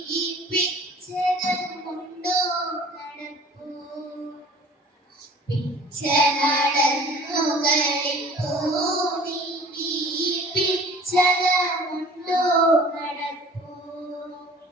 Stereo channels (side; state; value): both; normal; correlation 0.47